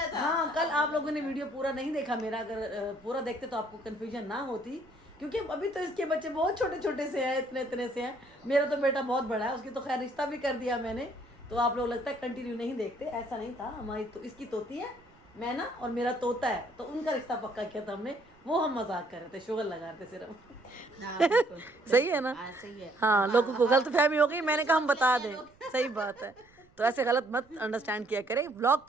था। हाँ, कल आप लोगों ने वीडियो पूरा नहीं देखा मेरा, अगर पूरा देखते तो आपको कंफ्यूजन ना होती, क्योंकि अभी तो इसके बच्चे बहुत छोटे छोटे से हैं, इतने इतने से हैं। मेरा तो बेटा बहुत बड़ा है, उसकी तो खैर रिश्ता भी कर दिया मैंने। तो आप लोग लगता है कंटिन्यू नहीं देखते, ऐसा नहीं था। हमारी तो इसकी तोती है, मैं ना, और मेरा तोता है, तो उनका रिश्ता पक्का किया था हमने। वो हम मजाक कर रहे थे, शुगर लगा रहे थे सिर्फ। सही है ना? सही है। हाँ, लोगों को गलत फहमी हो गई, मैंने कहा हम बता दें। सही बात है, तो ऐसे गलत मत अंडरस्टैंड किया करें, व्लॉग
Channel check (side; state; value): right; noise; rumble, 29 dB below the sound